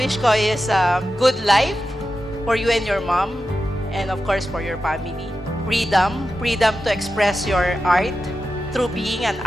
ko is a good life for you and your mom, and of course for your family. Freedom to express your art through being an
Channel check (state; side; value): normal; both; correlation 0.91